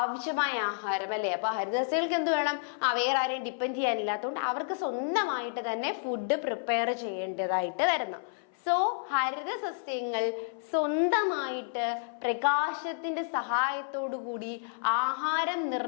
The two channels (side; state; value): right; silent; 58 dB below the other